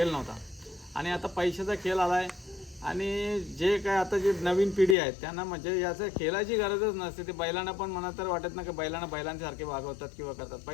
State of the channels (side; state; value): right; drops out; at 5.0 s